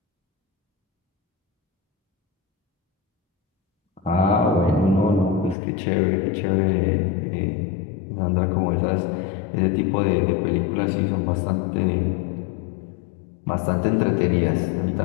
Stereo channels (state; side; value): drops out; right; at 5.6 s